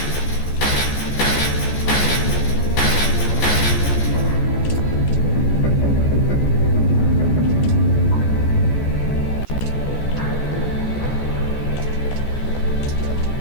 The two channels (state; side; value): late; right; 14 ms